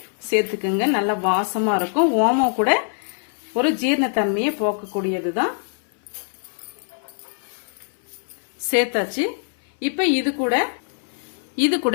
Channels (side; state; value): right; silent; 63 dB below the other